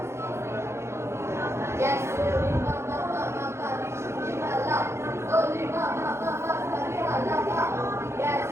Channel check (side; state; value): left; late; 0.13 ms